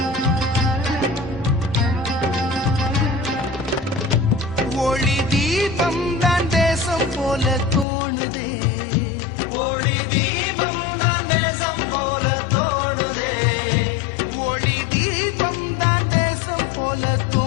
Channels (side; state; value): right; drops out; at 7.9 s